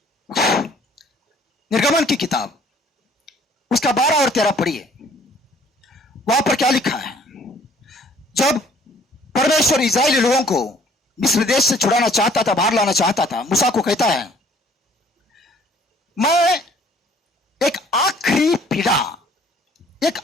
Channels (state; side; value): normal; both; correlation 0.57